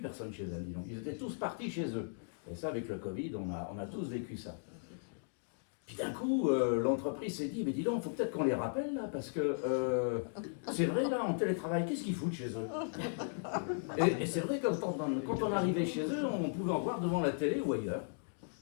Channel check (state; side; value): silent; right; digital silence